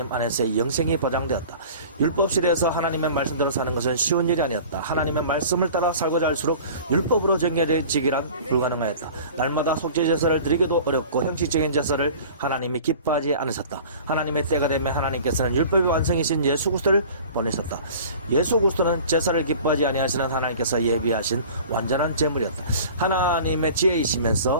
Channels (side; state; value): both; inverted; correlation -0.42